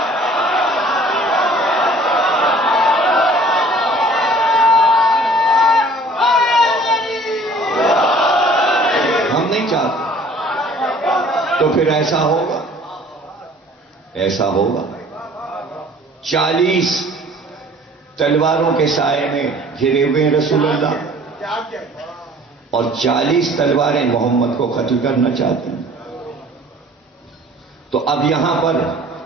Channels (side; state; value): both; normal; correlation 0.51